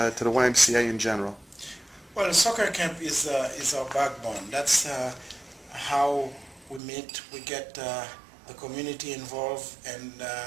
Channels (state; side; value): drops out; left; at 6.8 s